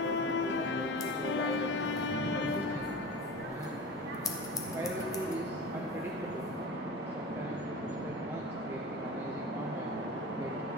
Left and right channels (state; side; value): normal; both; correlation 0.32